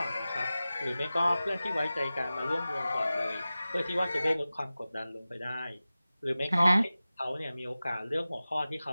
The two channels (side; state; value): both; inverted; correlation -0.96